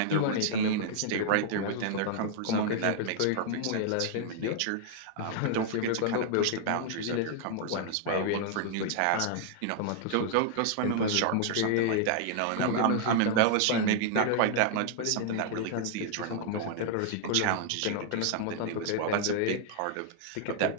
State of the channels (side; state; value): both; different; correlation 0.00